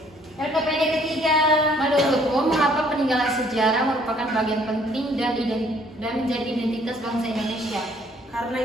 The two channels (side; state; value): both; normal; correlation 0.61